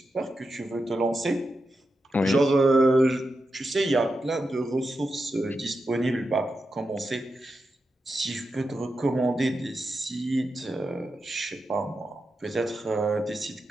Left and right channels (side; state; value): both; normal; correlation 0.88